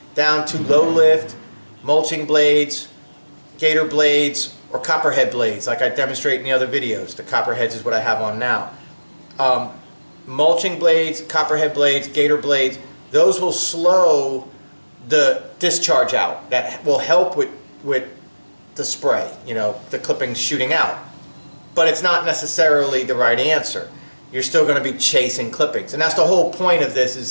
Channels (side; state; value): both; inverted; correlation -1.00